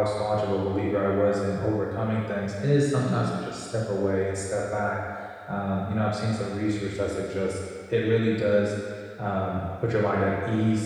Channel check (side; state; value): both; identical; correlation 1.00